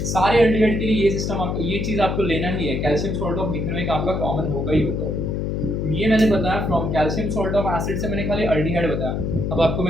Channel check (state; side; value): noise; left; hum, 1 dB below the sound